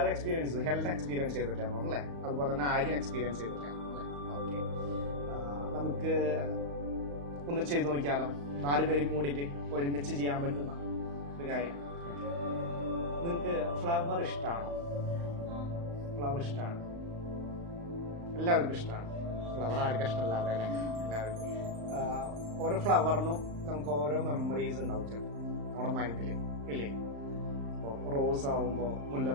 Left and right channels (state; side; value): late; left; 35 ms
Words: എക്സ്പീരിയൻസ് ചെയ്തു, ഹെൽത്ത് എക്സ്പീരിയൻസ് ചെയ്തിട്ടാണോ അല്ലേ? അതുപോലെ തന്നെ ആരും എക്സ്പീരിയൻസ് ചെയ്തിട്ടാണോ അല്ലേ? ഓക്കെ, നമുക്ക് ഒന്ന് ചെയ്ത് നോക്കിയാലോ? 4 പേരും കൂടിയിട്ട് ഒരുമിച്ച് ചെയ്യാൻ പറ്റുന്ന ഒരു കാര്യം. നിങ്ങൾക്ക് ഫ്ലവർ ഇഷ്ടമാണോ? ഫ്ലവർ ഇഷ്ടമാണ്, എല്ലാവർക്കും ഇഷ്ടമാണ്. ഫ്ലവർ ആർക്കും ഇഷ്ടമല്ലാതെ അല്ലേ? എല്ലാവർക്കും. ഓരോ ഫ്ലവറിനും നമുക്ക് ഓരോ മെമ്മറീസ് ഉണ്ടാവും നമ്മുടെ മൈൻഡിൽ ഇല്ലേ? ഇപ്പോൾ റോസ് ആവുമ്പോൾ,